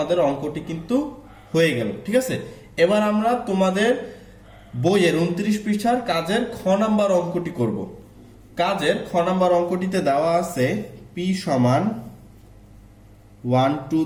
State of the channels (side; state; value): both; identical; correlation 1.00